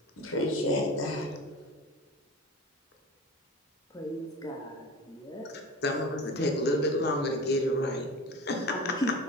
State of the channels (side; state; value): both; normal; correlation 0.34